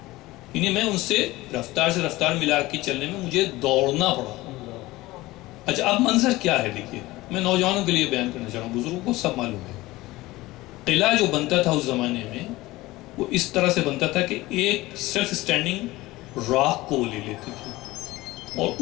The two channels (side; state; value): right; quieter; 19.0 dB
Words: یعنی میں ان سے رفتار ملا کے چلنے میں مجھے دوڑنا پڑا۔ اچھا اب منظر کیا ہے دیکھیے، میں نوجوانوں کے لیے بیان کرنا چاہ رہا ہوں، بزرگوں کو سب معلوم ہے۔ قلعہ جو بنتا تھا اس زمانے میں وہ اس طرح سے بنتا تھا کہ ایک سیلف سٹینڈنگ راک کو وہ لے لیتے تھے اور